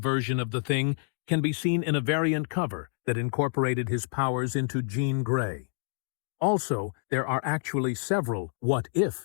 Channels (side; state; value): right; silent; 59 dB below the other